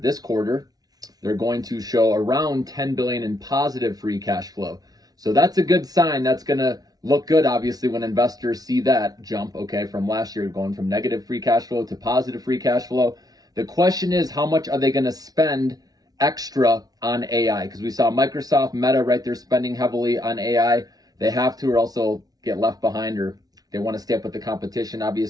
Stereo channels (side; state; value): left; late; 0.18 ms